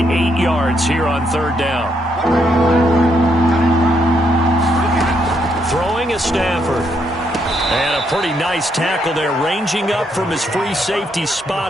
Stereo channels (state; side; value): normal; both; correlation 0.75